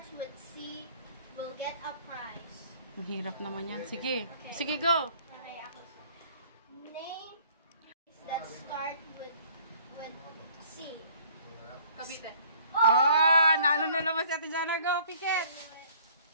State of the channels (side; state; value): both; inverted; correlation -0.55